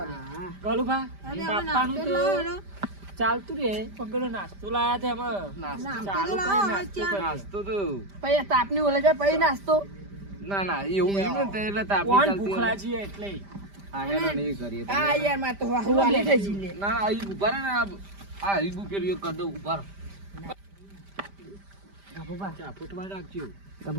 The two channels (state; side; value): late; left; 5.0 ms